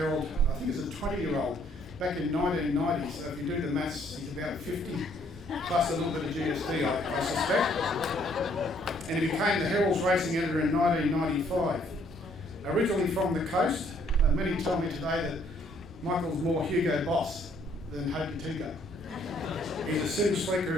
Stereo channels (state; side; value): normal; both; correlation 0.65